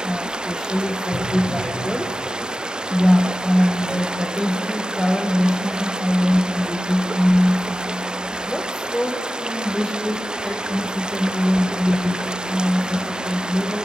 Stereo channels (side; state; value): both; normal; correlation 0.94